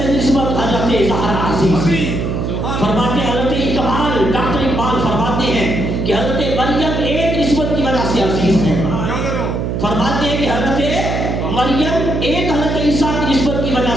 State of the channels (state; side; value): noise; right; hum, 1 dB below the sound